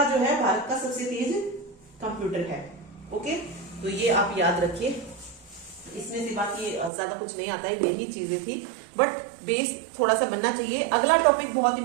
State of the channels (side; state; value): left; drops out; at 6.9 s